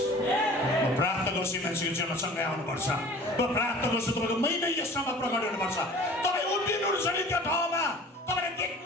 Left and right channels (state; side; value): normal; both; correlation 0.45